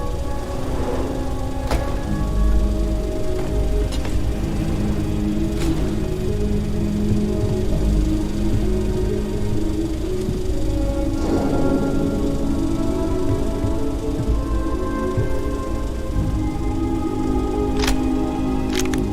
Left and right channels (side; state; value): both; identical; correlation 1.00